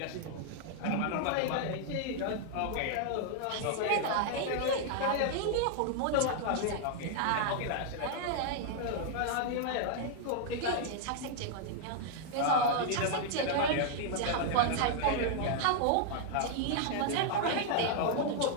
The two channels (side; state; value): both; different; correlation 0.00